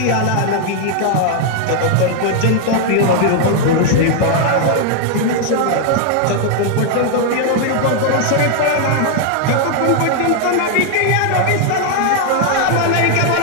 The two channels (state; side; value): different; both; correlation 0.00